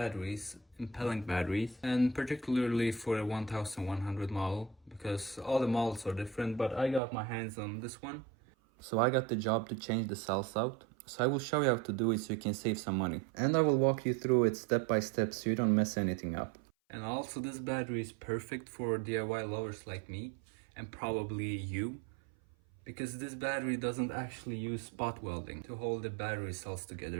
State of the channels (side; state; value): left; drops out; at 7.0 s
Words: in pellenc batteries, and particularly for a 1100 model, because all the models are different, but I got my hands on this one. So I got the job to change the cells out. So I will show you how to do it so you can save some money. And I will walk you through it step by step so you don't mess anything up. And also, this battery is perfect for DIY lovers like me, and probably you, because this battery doesn't actually use spot welding to hold the battery cells